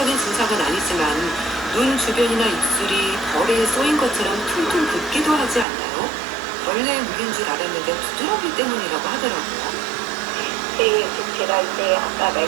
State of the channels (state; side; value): drops out; left; at 5.7 s